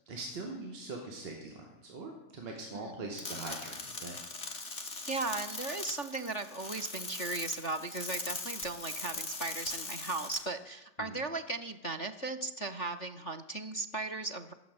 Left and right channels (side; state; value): right; late; 3.4 ms